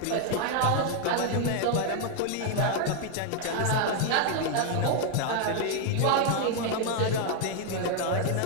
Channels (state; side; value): different; both; correlation 0.00